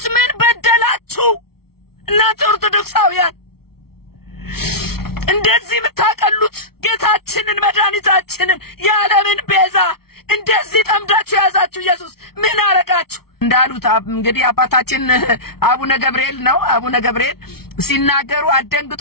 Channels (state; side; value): late; right; 0.94 ms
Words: ምን በደላችሁ እናንተ ኦርቶዶክሳውያን እንደዚህ ብታቀሉት ጌታችንን መድኃኒታችንን የዓለምን ቤዛ እንደዚህ ጠምዳችሁ ያዛችሁ ኢየሱስ ምን አረጋችሁ እንዳሉት እንግዲህ አባታችን አቡነ ገብርኤል ነው አቡነ ገብርኤል ሲናገሩ አደንግጡ